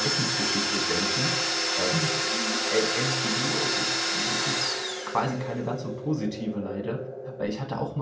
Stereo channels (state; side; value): identical; both; correlation 1.00